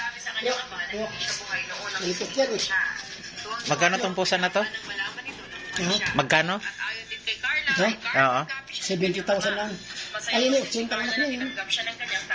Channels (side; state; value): both; identical; correlation 1.00